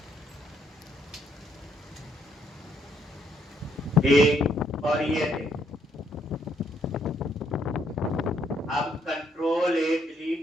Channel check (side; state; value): both; normal; correlation 0.72